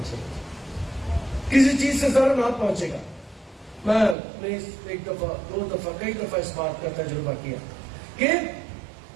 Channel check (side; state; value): left; drops out; at 4.2 s